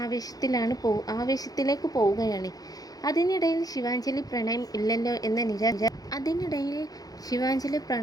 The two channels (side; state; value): right; late; 0.18 ms